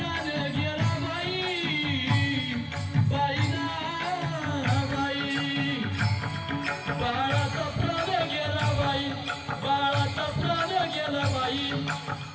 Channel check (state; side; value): identical; both; correlation 1.00